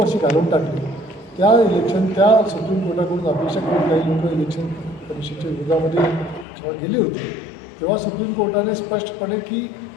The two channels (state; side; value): drops out; right; at 6.5 s